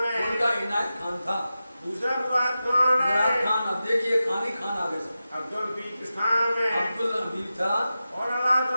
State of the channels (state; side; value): inverted; both; correlation -0.92